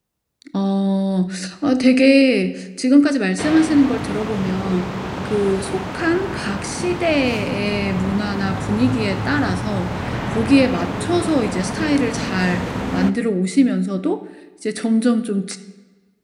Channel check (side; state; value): both; identical; correlation 1.00